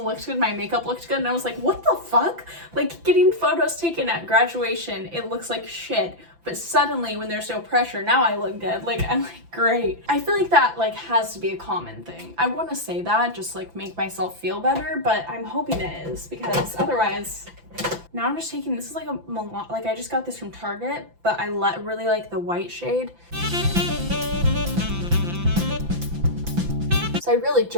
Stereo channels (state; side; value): late; left; 5.9 ms